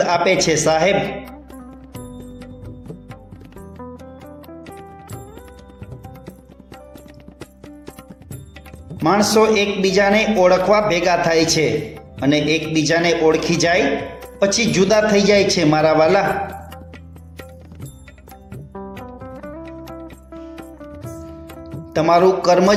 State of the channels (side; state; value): both; identical; correlation 1.00